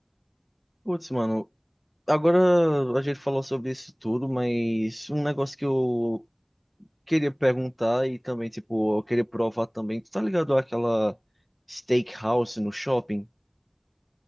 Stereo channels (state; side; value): identical; both; correlation 1.00